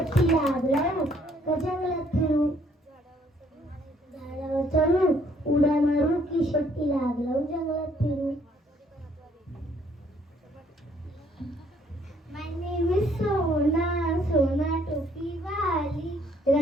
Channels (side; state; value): both; normal; correlation 0.65